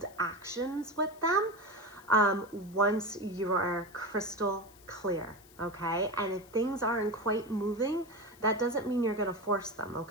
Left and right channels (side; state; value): left; noise; hiss, 25 dB below the sound